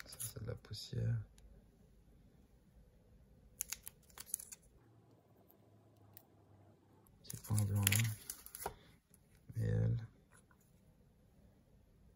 Ça, c'est de la poussière. Petit point blanc là. Et elle.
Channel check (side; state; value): both; identical; correlation 1.00